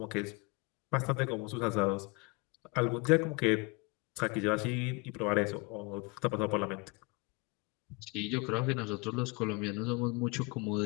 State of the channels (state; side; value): quieter; right; 28.8 dB